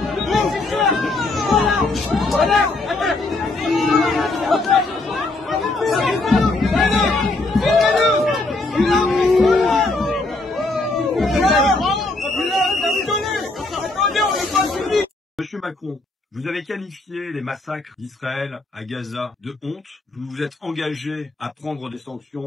Monsieur Macron, vous avez qualifié les massacres d'Israël à Gaza de honte. Vous vous êtes engagé à prendre des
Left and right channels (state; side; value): quieter; right; 3.1 dB